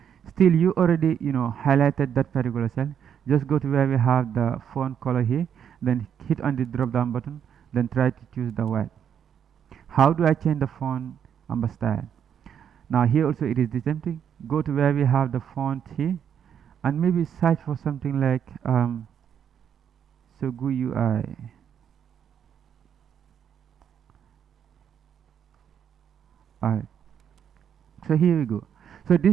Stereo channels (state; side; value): quieter; left; 8.5 dB